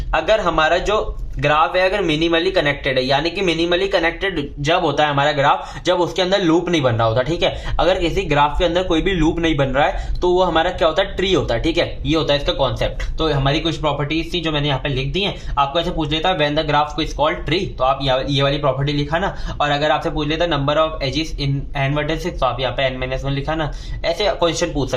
अगर हमारा जो ग्राफ है अगर मिनिमली कनेक्टेड है, यानी कि मिनिमली कनेक्टेड जब होता है हमारा ग्राफ, जब उसके अंदर लूप नहीं बन रहा होता, ठीक है। अगर किसी ग्राफ के अंदर कोई भी लूप नहीं बन रहा है तो वो हमारा क्या होता है, ट्री होता है, ठीक है। ये होता है इसका कॉन्सेप्ट। तो हमारी कुछ प्रॉपर्टीज थी जो मैंने यहाँ पे लिख दी हैं। आपको ऐसे पूछ लेता है when the graph is called tree, तो आप ये वाली प्रॉपर्टी लिखाना। और अगर आपसे पूछ लेता number of edges in n vertices, तो आप यहाँ पे n-1 लिखाना। ऐसे क्वेश्चन पूछ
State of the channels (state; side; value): identical; both; correlation 1.00